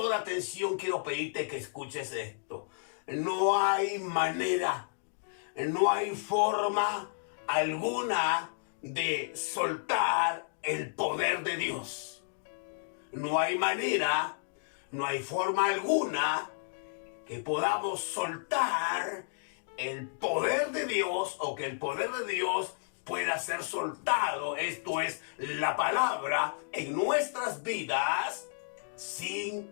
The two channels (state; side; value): silent; right; digital silence